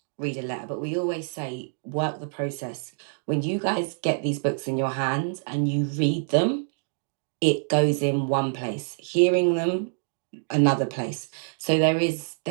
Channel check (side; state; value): left; silent; digital silence